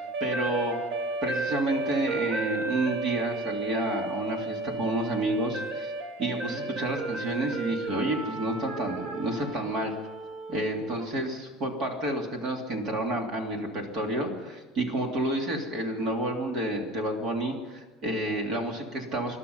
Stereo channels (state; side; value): normal; both; correlation 0.41